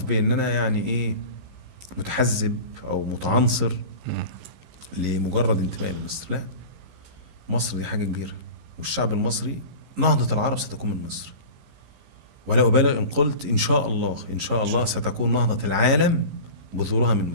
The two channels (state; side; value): late; left; 15 ms